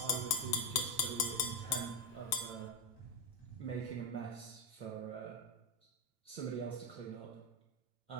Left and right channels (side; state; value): right; late; 8.9 ms